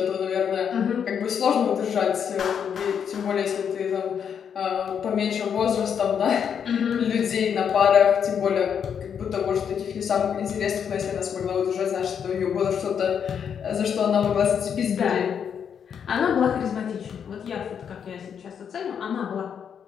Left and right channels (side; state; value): right; quieter; 7.7 dB